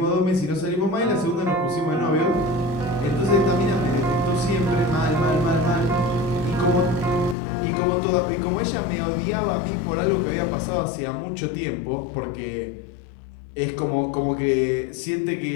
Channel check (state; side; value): drops out; right; at 7.4 s